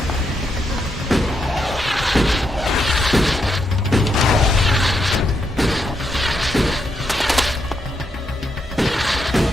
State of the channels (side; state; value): both; normal; correlation 0.80